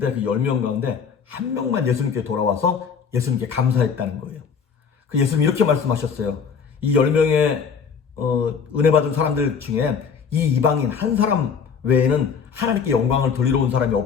그 10명 가운데 한 명만 예수님께 돌아와서 예수님께 감사했다는 거예요. 그 예수님이 이렇게 말씀하셨어요. 이 10명의 은혜 받은 사람들 중에 이 이방인 한 사람 외에는 하나님께 영광을 돌리러 온 사람이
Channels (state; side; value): quieter; right; 6.4 dB